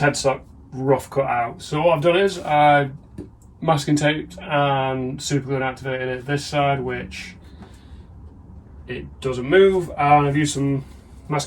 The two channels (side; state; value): both; identical; correlation 1.00